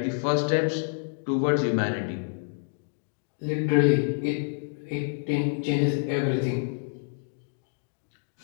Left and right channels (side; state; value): right; silent; digital silence